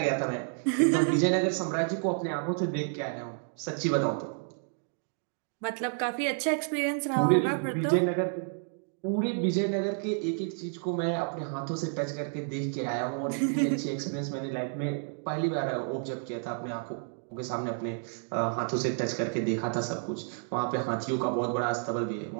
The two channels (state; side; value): silent; left; 58 dB below the other